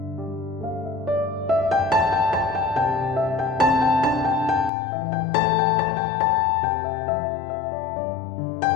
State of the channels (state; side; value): drops out; right; at 4.7 s